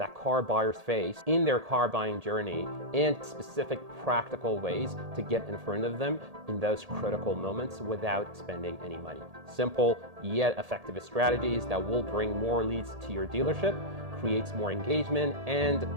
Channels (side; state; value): left; late; 1.8 ms